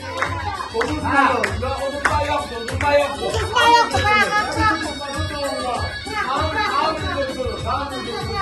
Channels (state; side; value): identical; both; correlation 1.00